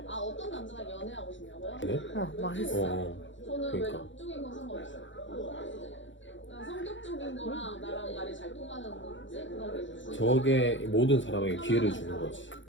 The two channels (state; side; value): late; right; 0.55 ms